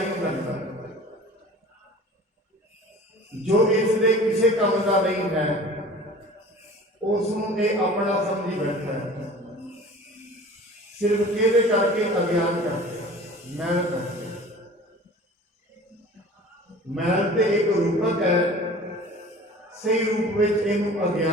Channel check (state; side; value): normal; both; correlation 0.43